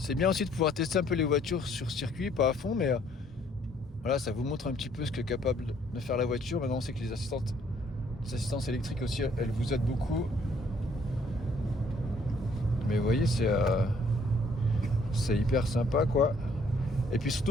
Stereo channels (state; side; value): normal; both; correlation 0.63